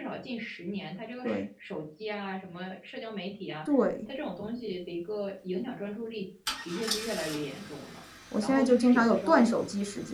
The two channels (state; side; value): identical; both; correlation 1.00